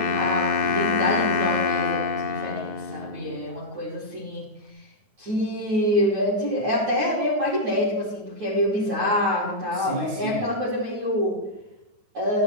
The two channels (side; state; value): left; late; 9.4 ms